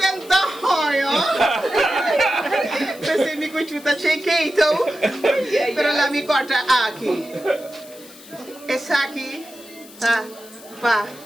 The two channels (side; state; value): left; noise; hiss, 20 dB below the sound